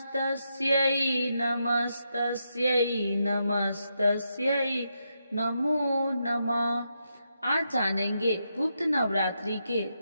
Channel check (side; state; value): both; inverted; correlation -0.82